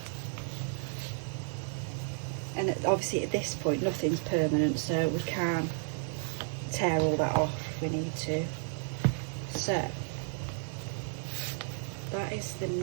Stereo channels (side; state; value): left; silent; 56 dB below the other